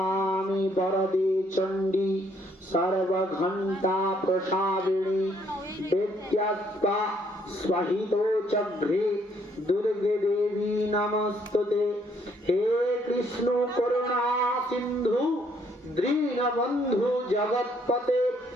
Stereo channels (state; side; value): normal; both; correlation 0.68